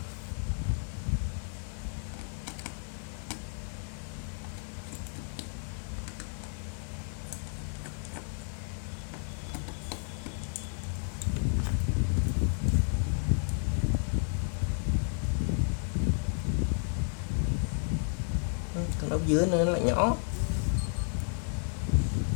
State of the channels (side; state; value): right; silent; 56 dB below the other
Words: Con ốc dưới nó lại nhỏ,